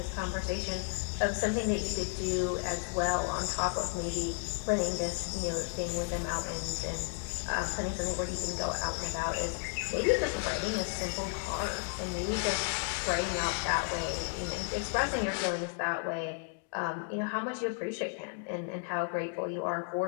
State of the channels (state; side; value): silent; right; 56 dB below the other